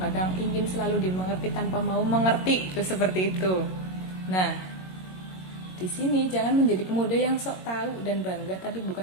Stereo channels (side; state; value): right; late; 22 ms